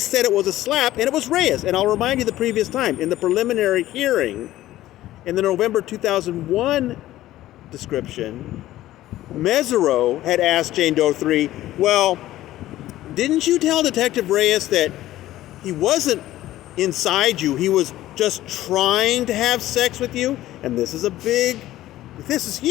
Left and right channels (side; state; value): right; quieter; 14.8 dB